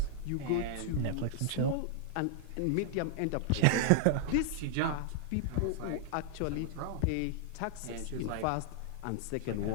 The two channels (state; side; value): different; both; correlation 0.00